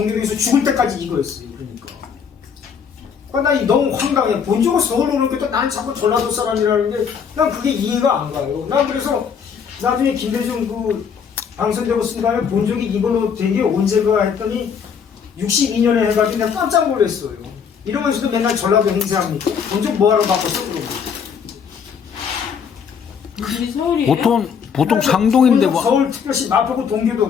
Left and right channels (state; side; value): quieter; right; 6.9 dB